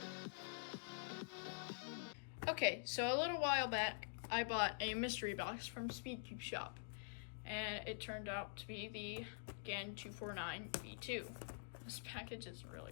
Okay, so a little while back I bought a mystery box from Speedcube Shop, and it turned out to be the GAN 249 V2. This package is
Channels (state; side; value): silent; right; digital silence